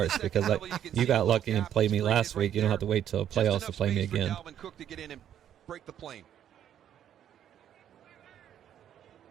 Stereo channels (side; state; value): left; quieter; 10.2 dB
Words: because you got lucky and played me last week. You don't have to wait till playoffs to play me again.